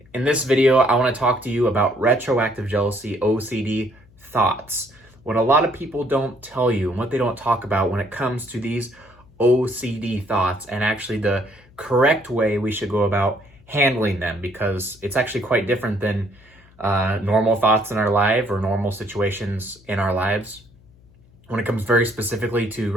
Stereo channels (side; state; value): left; noise; hum, 27 dB below the sound